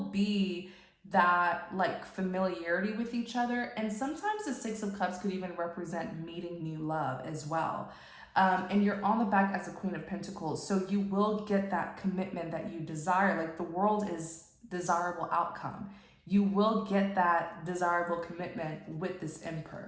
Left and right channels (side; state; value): both; identical; correlation 1.00